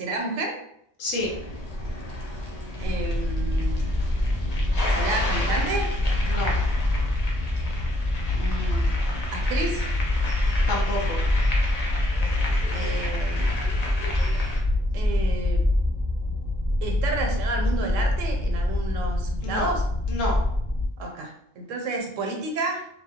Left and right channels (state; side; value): normal; both; correlation 0.70